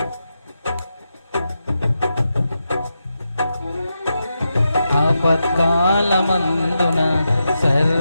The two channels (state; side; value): inverted; both; correlation -0.87